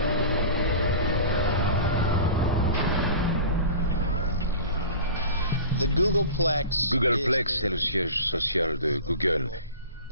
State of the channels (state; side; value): inverted; both; correlation -0.35